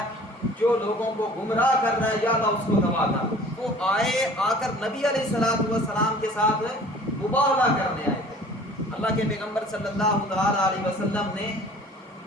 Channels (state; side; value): normal; both; correlation 0.48